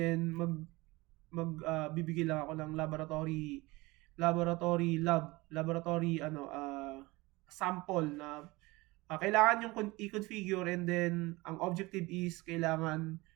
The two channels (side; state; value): left; quieter; 22.2 dB